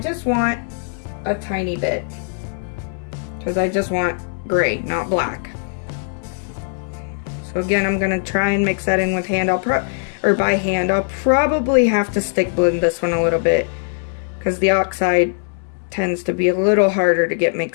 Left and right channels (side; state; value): right; silent; 66 dB below the other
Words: want a tiny bit because I just want gray, not black. So again, I'm gonna try and mix that in with hand. By hand. I'll probably have to stick blend this one a little bit because the Oxide tends to be a little harder to get